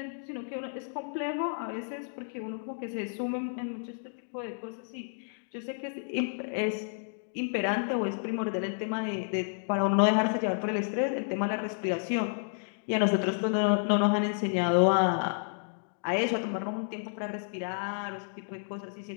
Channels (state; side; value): silent; right; digital silence